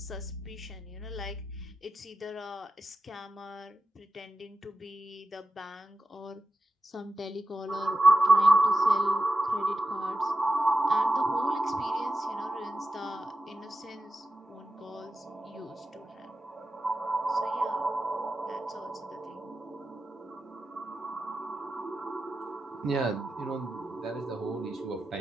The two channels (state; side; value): normal; both; correlation 0.92